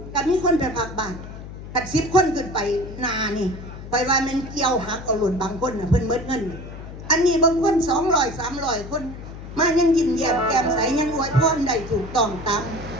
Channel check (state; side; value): noise; left; hum, 12 dB below the sound